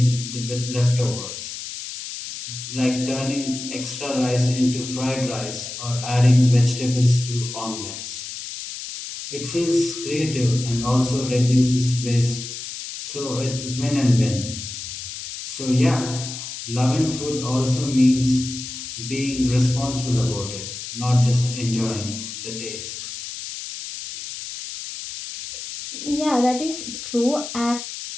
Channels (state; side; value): noise; left; hiss, 9 dB below the sound